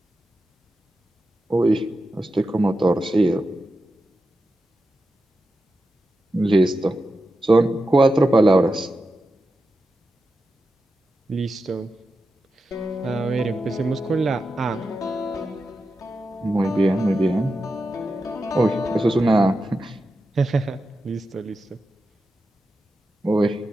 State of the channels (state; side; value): normal; both; correlation 0.90